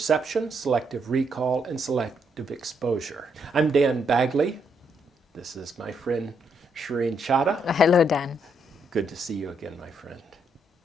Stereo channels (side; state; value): both; normal; correlation 0.75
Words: selective recall, and selective exposure. I'm Dan Bagley. This is my friend Shireen Chadha. Hello, Dan. Good to see you again, my friend.